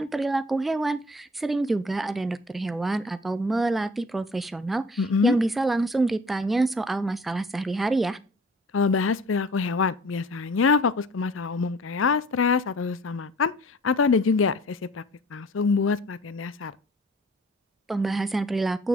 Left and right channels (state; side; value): normal; both; correlation 0.50